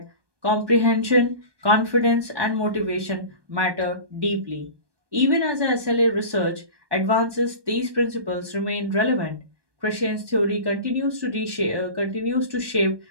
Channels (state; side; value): late; left; 1.2 ms